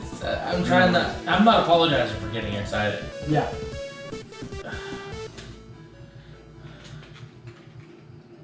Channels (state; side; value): identical; both; correlation 1.00